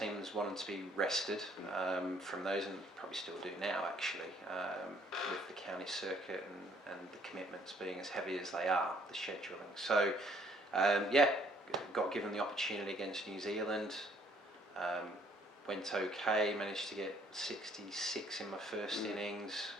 wanted to be rested from those, and probably still do now actually, with the county circuit and the commitments being as heavy as they are, the scheduling. So got given the opportunity against New Zealand. Went okay, managed to get 66 in my first innings.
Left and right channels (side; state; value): both; normal; correlation 0.63